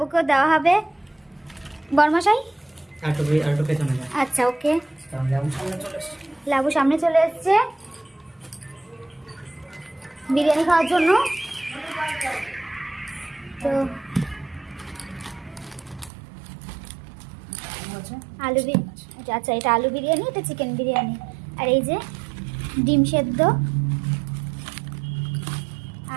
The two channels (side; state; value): left; drops out; at 16.1 s